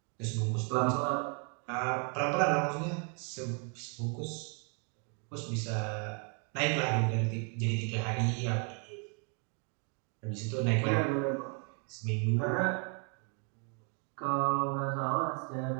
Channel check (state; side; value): quieter; left; 38.8 dB